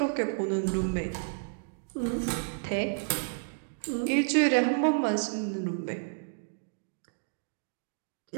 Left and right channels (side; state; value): left; silent; digital silence